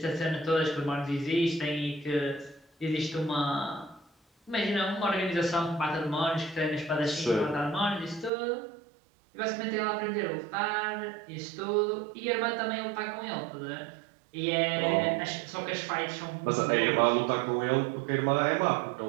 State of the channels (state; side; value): drops out; left; at 8.3 s